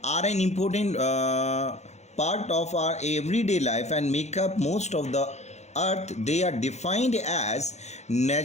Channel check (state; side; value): late; right; 0.33 ms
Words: are an important part of our everyday life and make up most of the earth. They are defined as